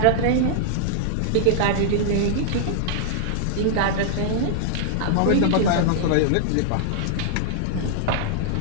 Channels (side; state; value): both; different; correlation -0.01